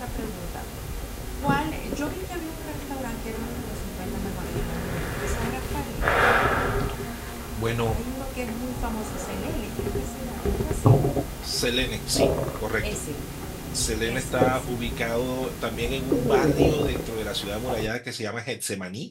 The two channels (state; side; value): identical; both; correlation 1.00